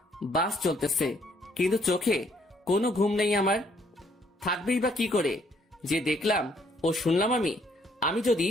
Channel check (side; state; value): both; normal; correlation 0.67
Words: বাস চলতেছে, কিন্তু চোখে কোনো ঘুম নেই আমার। থাকবেই বা কি করে? যে দেখলাম ও শুনলাম আমি যদি